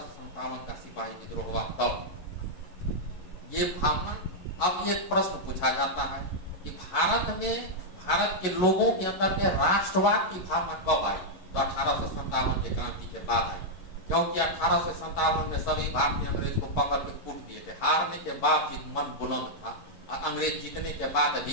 का सिपाही विद्रोह हुआ तब। ये भावना, अब एक प्रश्न पूछा जाता है कि भारत के लोगों के अंदर में राष्ट्रवाद की भावना कब आई? तो 1857 के क्रांति के बाद आई, क्योंकि 1857 में सभी भारतीय अंग्रेज को पकड़ के कूट दिए थे। हारने के बाद भी मन बुलंद था और अंग्रेज जीतने के बाद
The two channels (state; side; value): late; right; 11 ms